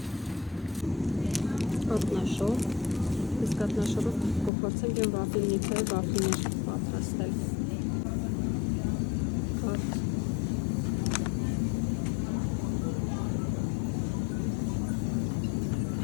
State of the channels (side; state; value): right; drops out; at 4.5 s